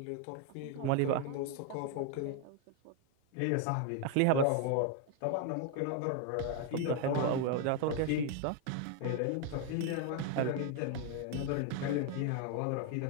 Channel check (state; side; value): different; both; correlation 0.01